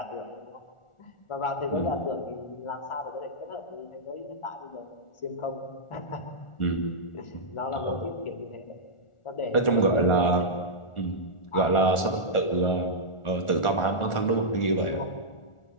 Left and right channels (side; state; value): right; late; 1.4 ms